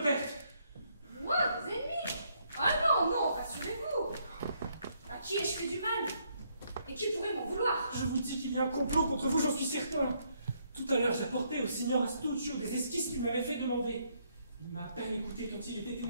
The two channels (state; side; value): inverted; both; correlation -0.72